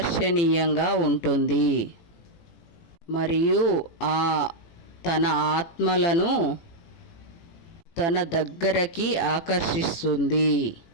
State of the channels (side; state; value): right; late; 18 ms